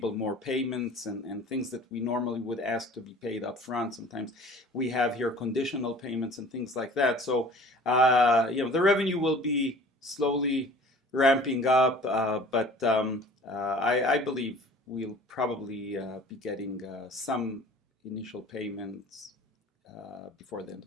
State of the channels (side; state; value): both; normal; correlation 0.46